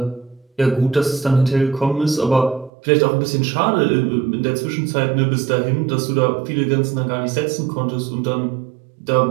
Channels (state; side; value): drops out; left; at 2.7 s